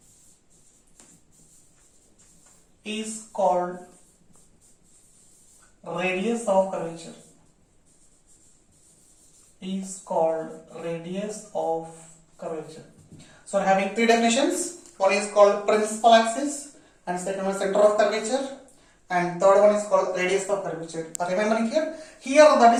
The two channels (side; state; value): both; identical; correlation 1.00